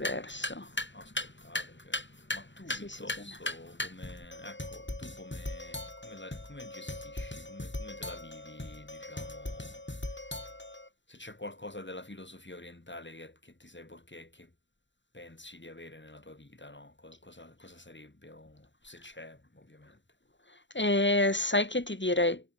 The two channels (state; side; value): late; right; 0.54 ms